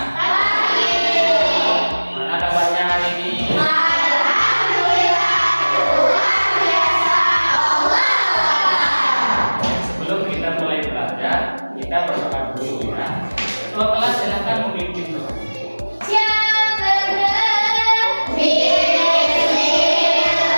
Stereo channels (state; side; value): inverted; both; correlation -1.00